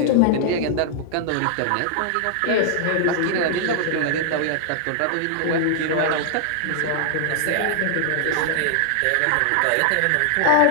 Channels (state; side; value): different; both; correlation -0.01